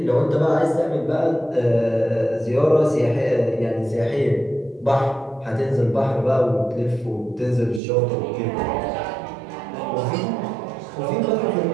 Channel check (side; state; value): left; drops out; at 7.8 s